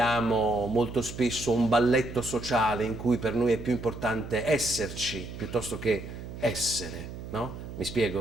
molto spesso un balletto sociale in cui per noi è più importante esserci piuttosto che essere, no? Mi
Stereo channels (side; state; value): right; noise; hum, 10 dB below the sound